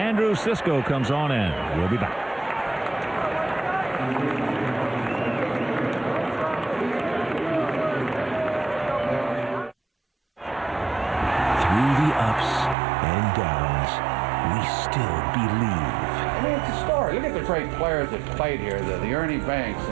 Cisco comes on in. We'll be back. Through the ups and downs, we still believe. I mean, it's a story. Look at the great players that played here, the Ernie Banks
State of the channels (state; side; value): drops out; left; at 12.8 s